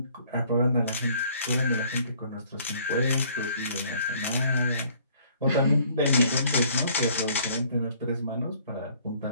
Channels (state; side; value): inverted; both; correlation -0.59